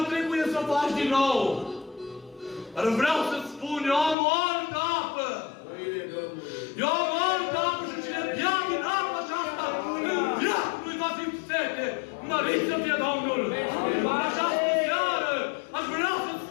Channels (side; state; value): right; drops out; at 4.2 s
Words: trebuie să o faci din nou. Dar vreau să-ți spun, eu am o altă apă. Eu am o altă apă și cine bea din apa aceasta, în viață nu-i va fi sete. Mărit să fie Domnul! În această seară aș vrea să-ți